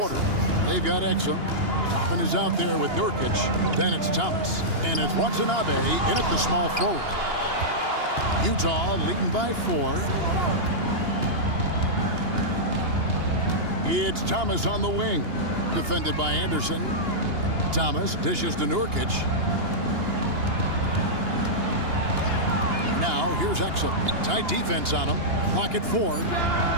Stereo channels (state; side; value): late; left; 2.8 ms